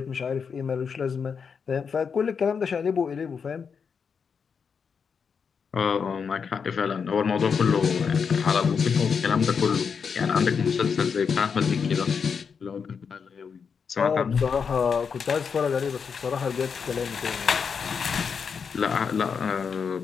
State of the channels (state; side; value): quieter; right; 6.2 dB